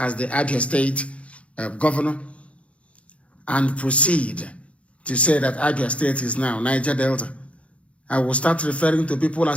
the Abia State governor, and proceed to say that Abia State is now Niger Delta, I will start referring to people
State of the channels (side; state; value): right; late; 0.062 ms